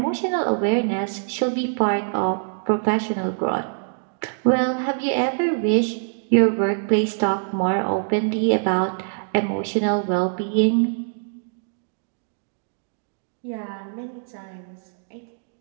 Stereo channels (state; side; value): silent; left; digital silence